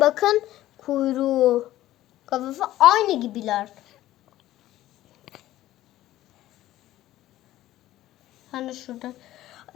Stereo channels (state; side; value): quieter; right; 14.6 dB